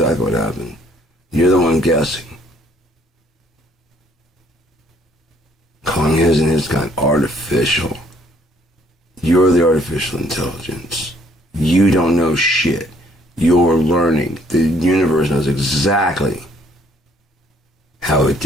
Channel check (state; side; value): normal; both; correlation 0.63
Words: what happened. You're the one guessing. Calling his and his kind artificial. You're the artificial intelligence. You don't know shit. You're learning. The universe knows exactly how it